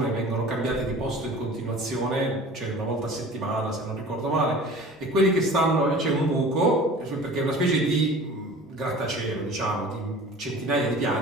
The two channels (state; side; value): normal; both; correlation 0.42